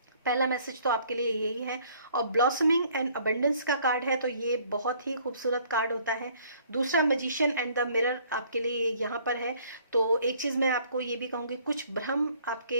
पहला मैसेज तो आपके लिए यही है। और ब्लॉसमिंग एंड अबंडेंस का कार्ड है तो ये बहुत ही खूबसूरत कार्ड होता है। दूसरा मैजिशियन एंड द मिरर आपके लिए यहाँ पर है। तो एक चीज मैं आपको ये भी कहूंगी, कुछ भ्रम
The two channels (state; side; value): inverted; both; correlation -0.59